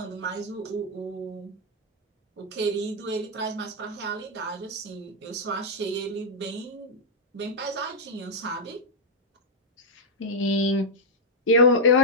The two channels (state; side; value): normal; both; correlation -0.03